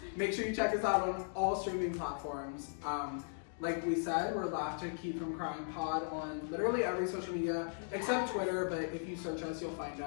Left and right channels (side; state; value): right; silent; digital silence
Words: make sure you check us out on all streaming platforms. Like we said, we're Laugh to Keep From Crying Pod on literally every social media except Twitter, but if you search us, you'll find